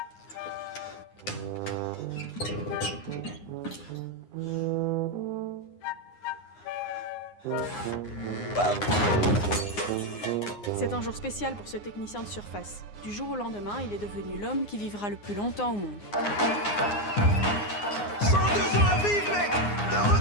C'est un jour spécial pour ce technicien de surface. Du jour au lendemain, il est devenu l'homme qui vivra le plus longtemps au monde. 102 ans à vivre, mec! Le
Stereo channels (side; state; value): right; late; 9.7 ms